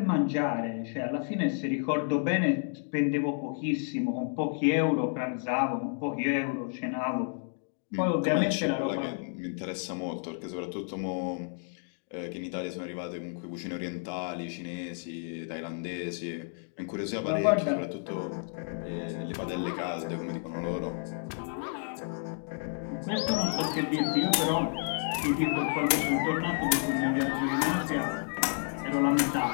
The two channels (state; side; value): silent; right; 57 dB below the other